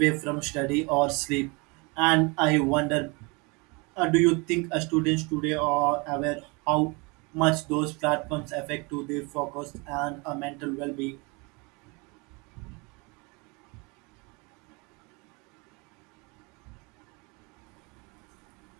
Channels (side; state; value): left; quieter; 28.6 dB